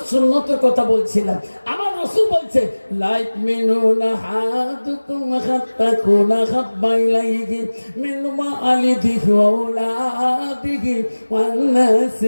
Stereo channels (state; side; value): inverted; both; correlation -1.00